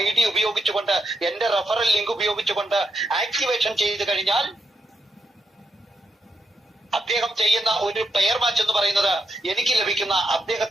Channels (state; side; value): normal; both; correlation 0.82